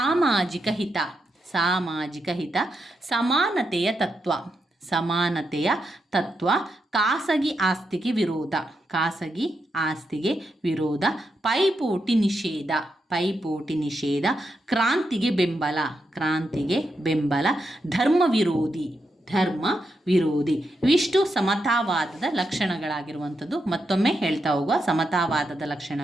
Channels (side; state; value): both; normal; correlation 0.84